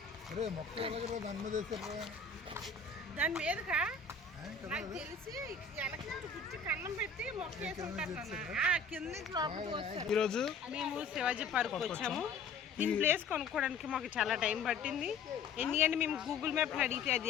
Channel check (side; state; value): right; quieter; 4.7 dB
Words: దాని మీదకా నాకు తెలిసి వెనక నుంచి గుచ్చి కన్నం పెట్టి మొక్కేసి ఉంటారు కింద నుంచి లోపలికి వస్తారు. ఈరోజు మేము శివాజీ పార్క్ వచ్చాము. దీని ప్లేస్ కొనుక్కోవడానికి మాకు చాలా టైం పట్టింది. ఎందుకంటే మేము గూగుల్ మ్యాప్ అడిగితే